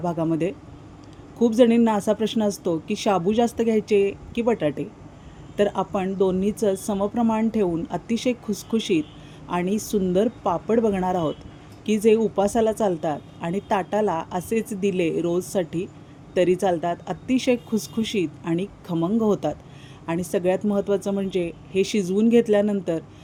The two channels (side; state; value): both; identical; correlation 1.00